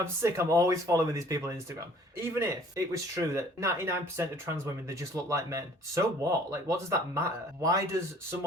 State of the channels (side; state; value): both; normal; correlation 0.54